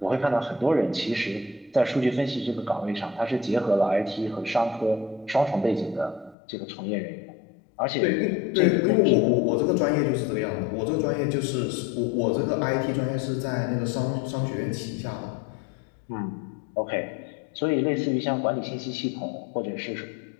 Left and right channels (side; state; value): right; drops out; at 6.4 s